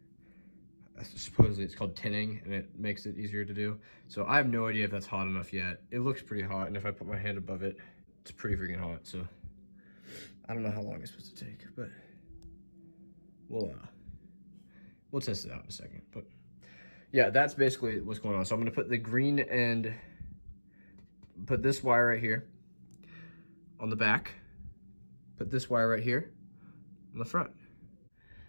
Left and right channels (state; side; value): inverted; both; correlation -1.00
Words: supposedly it's called tinning, and it makes it easier to do. So I have no idea if that's hot enough yet. It looks pretty hot, and if I put my hand above it, it's pretty freaking hot. So I don't know how long it's supposed to take, but we'll test it out in a second. But yeah, that's basically what's going on. So I'm gonna put the green and put this wire right here on the back, put this wire right here on the front.